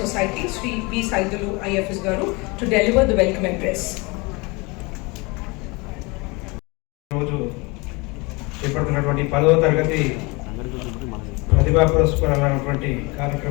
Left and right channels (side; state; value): right; quieter; 26.6 dB